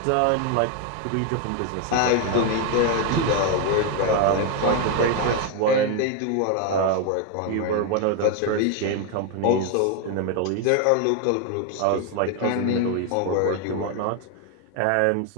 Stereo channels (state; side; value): different; both; correlation 0.01